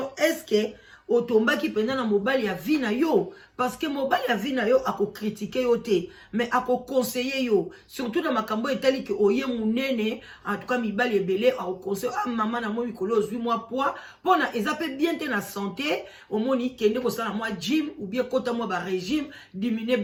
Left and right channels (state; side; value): identical; both; correlation 1.00